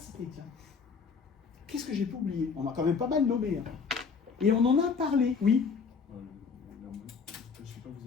tiens. Qu'est-ce que j'ai pu oublier? On a quand même pas mal nommé. Hein. Et on en a parlé, oui. Je sais pas,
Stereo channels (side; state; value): right; quieter; 5.5 dB